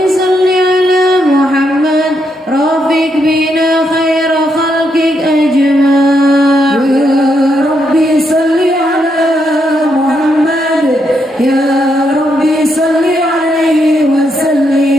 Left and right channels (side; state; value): both; normal; correlation 0.79